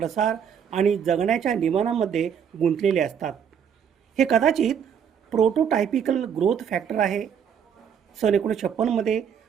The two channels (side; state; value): left; quieter; 7.9 dB